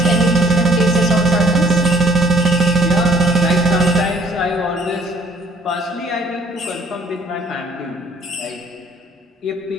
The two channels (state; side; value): normal; both; correlation 0.59